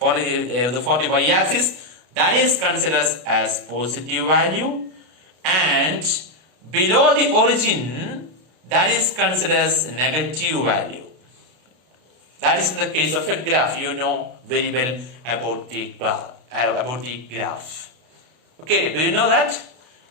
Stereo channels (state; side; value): late; left; 32 ms